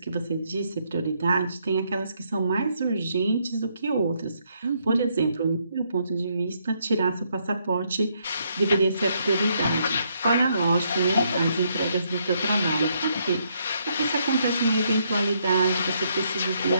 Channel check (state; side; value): inverted; both; correlation -0.73